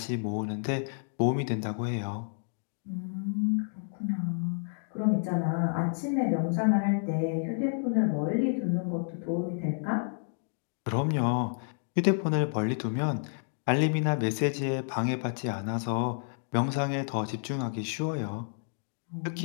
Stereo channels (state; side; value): silent; right; digital silence